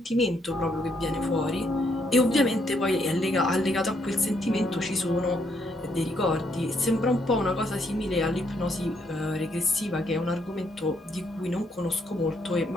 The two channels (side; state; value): both; normal; correlation 0.73